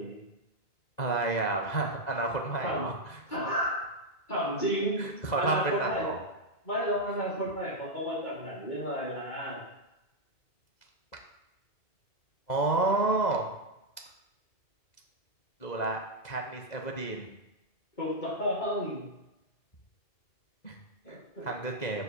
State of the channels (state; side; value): late; right; 2.0 ms